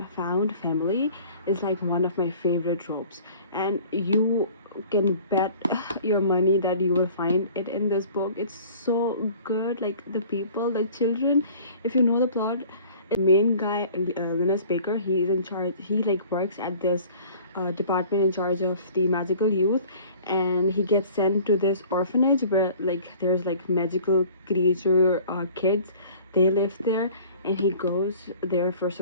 found family is like one of my favorite tropes, and you can bet your money that you will find it in this book. It's so good. Like, the people, the children, if you know the plot, the main guy, Linus Baker, he is in charge. He like works at this department in charge of the magical youth, and he gets sent to this orphanage where like there's like magical creature kids. They live there, and he goes there for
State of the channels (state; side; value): inverted; both; correlation -0.48